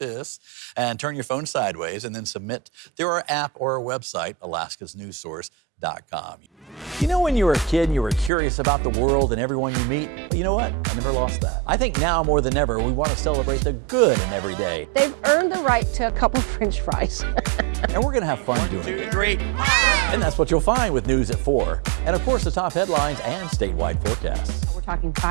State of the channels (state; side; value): drops out; left; at 8.3 s